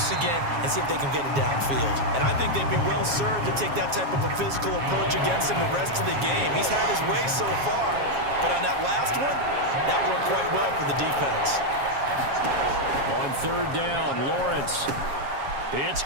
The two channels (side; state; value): left; late; 7.3 ms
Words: again, and see if they can get it downfield. And I think they'd be well served to take that type of a physical approach against him the rest of the game. He's had his way so far, but on that last one, that worked quite well for the defense. On third down, Lawrence. It's